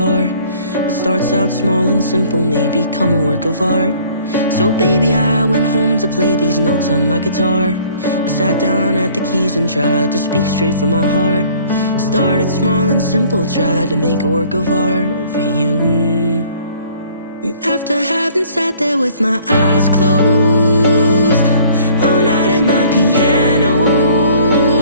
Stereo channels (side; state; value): both; inverted; correlation -0.55